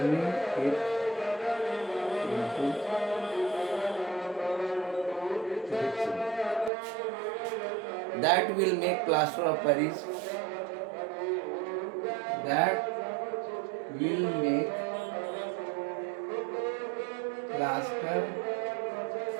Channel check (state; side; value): drops out; left; at 6.7 s